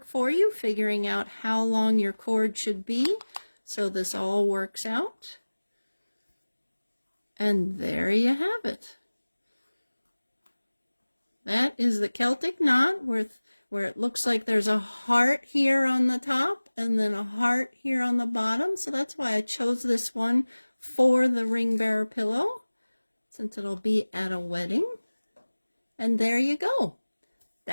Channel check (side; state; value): both; inverted; correlation -1.00